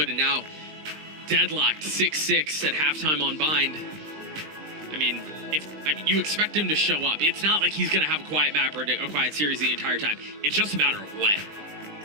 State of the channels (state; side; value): late; left; 20 ms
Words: and now deadlocked 6-6 at halftime on Bind. I mean, you expect him to show up. It's not like he's going to have a quiet map or a quiet series the entire time. It's just a matter of when.